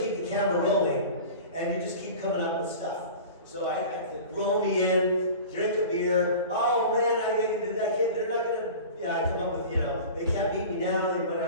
keep the camera rolling, and you just keep coming up with stuff. So I roll me in, drink a beer, oh man, I can't, they're not going to, I come up with, they can't beat me now,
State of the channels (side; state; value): both; inverted; correlation -0.37